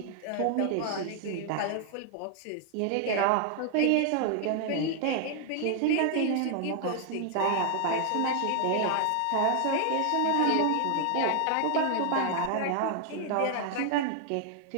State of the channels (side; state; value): both; different; correlation 0.00